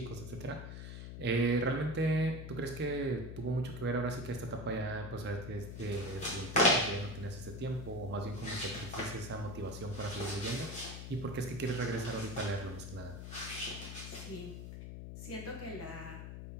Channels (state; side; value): noise; left; hum, 8 dB below the sound